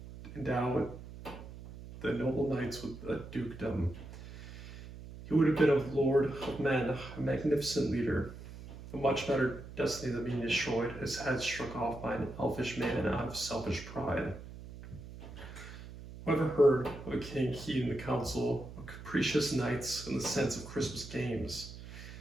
endowed the noble knights with a dukedom. He would have been a lord of men, a magnificent leader. A much better destiny than being destroyed, his head struck off by an elfish man out of selfish pride." Whoever heard of a king heeding the counsel of capricious knights and the sense of Christmas games?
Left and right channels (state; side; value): noise; right; hum, 13 dB below the sound